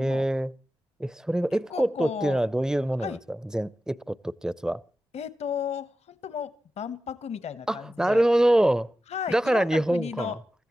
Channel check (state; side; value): normal; both; correlation 0.93